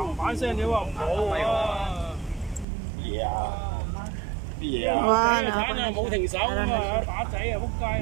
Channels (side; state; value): left; drops out; at 2.7 s